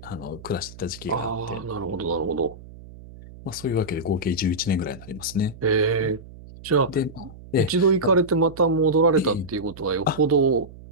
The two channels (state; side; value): noise; right; hum, 18 dB below the sound